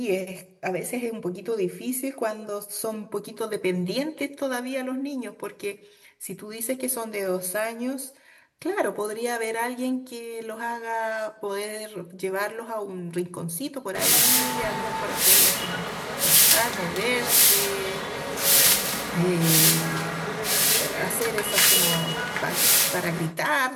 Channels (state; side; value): identical; both; correlation 1.00